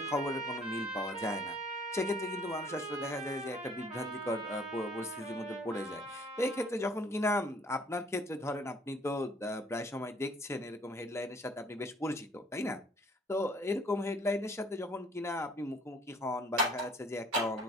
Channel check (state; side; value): normal; both; correlation 0.57